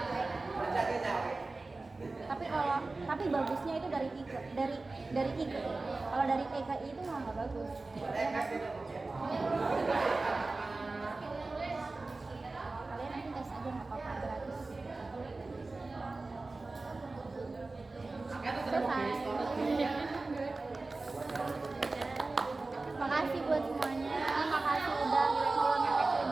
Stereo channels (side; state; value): left; quieter; 3.4 dB